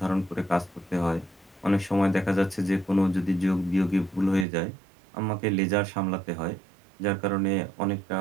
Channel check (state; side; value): drops out; left; at 4.5 s